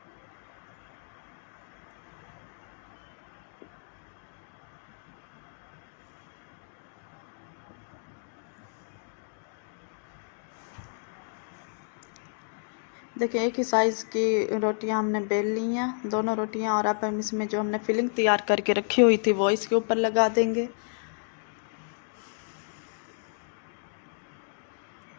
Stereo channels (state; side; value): silent; right; digital silence